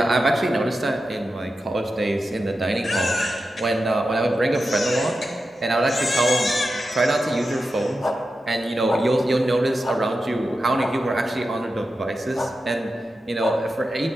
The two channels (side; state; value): both; normal; correlation 0.91